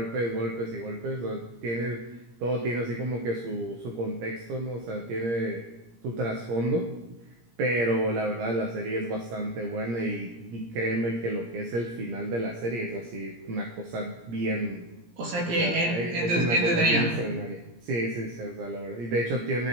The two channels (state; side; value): late; left; 17 ms